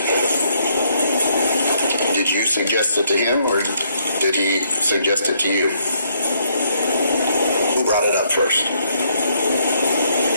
Did you suggest it to him, or did he suggest it to you? Who brought it up first?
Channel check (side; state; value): both; inverted; correlation -0.71